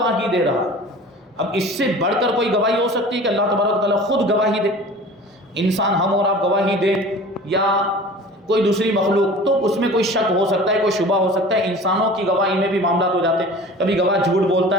دے رہا ہے۔ اب اس سے بڑھ کر کوئی گواہی ہو سکتی ہے کہ اللہ تبارک و تعالیٰ خود گواہی دے؟ انسان ہم اور آپ گواہی دے یا کوئی دوسری مخلوق، تو اس میں کوئی شک ہو سکتا ہے، کوئی شبہ ہو سکتا ہے۔ انسانوں کی گواہی میں بھی معاملات ہو جاتے ہیں، کبھی گواہ جھوٹ بولتا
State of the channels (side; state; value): both; normal; correlation 0.41